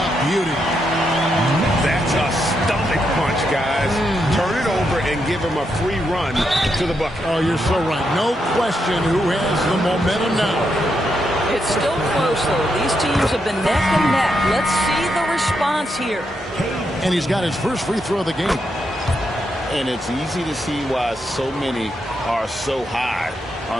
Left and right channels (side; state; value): both; normal; correlation 0.81